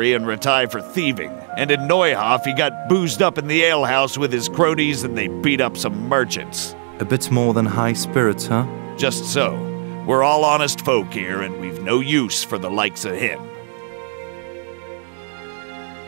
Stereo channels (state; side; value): silent; left; digital silence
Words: and retired for thieving, and in Neuhof he got boozed up in the alehouse with his cronies and they beat up some merchants. A bit more than high spirits, huh? Just so. We're all honest folk here, and we've no use for the likes of him.